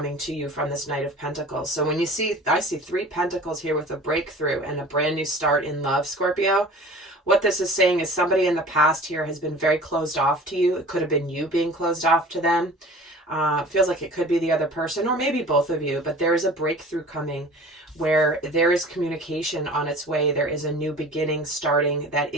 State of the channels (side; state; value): both; normal; correlation 0.43